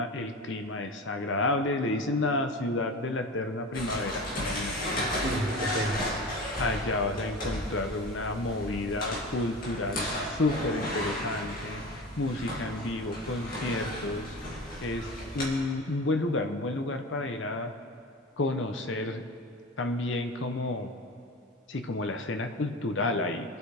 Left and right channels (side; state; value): both; normal; correlation 0.32